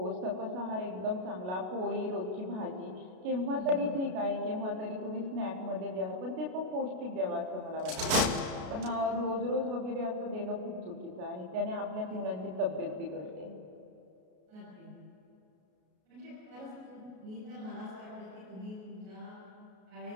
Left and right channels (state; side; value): late; left; 33 ms